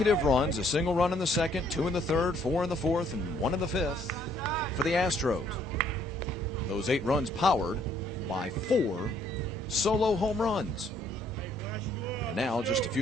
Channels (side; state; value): both; normal; correlation 0.65